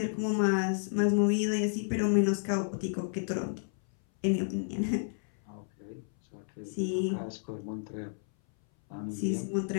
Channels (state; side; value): silent; right; 57 dB below the other